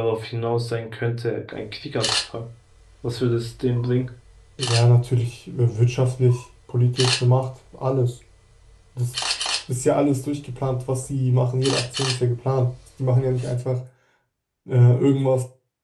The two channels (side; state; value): both; identical; correlation 1.00